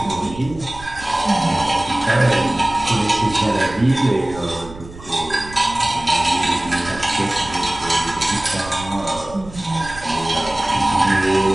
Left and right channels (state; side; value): noise; right; rumble, 16 dB below the sound